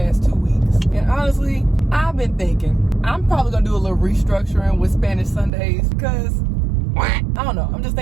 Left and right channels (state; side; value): drops out; left; at 5.5 s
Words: 2 weeks? And honestly, I've been thinking I'm probably gonna do a little restructuring with Spanish Sundays because I don't know. I'm just